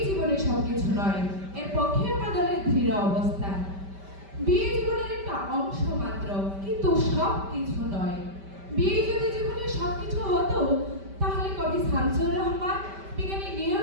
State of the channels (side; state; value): left; late; 5.1 ms